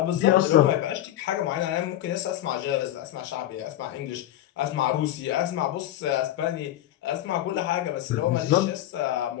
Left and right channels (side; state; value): right; quieter; 13.3 dB